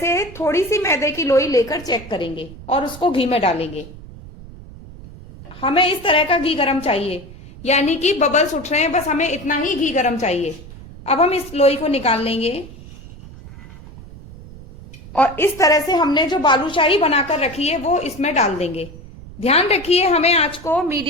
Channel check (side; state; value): right; noise; rumble, 17 dB below the sound